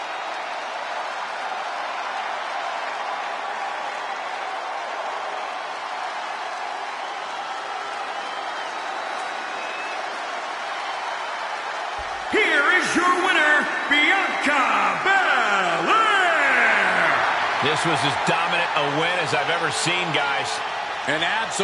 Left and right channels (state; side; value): identical; both; correlation 1.00